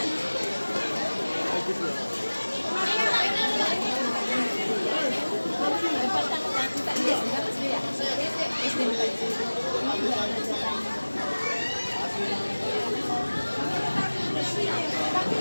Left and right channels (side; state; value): both; inverted; correlation -1.00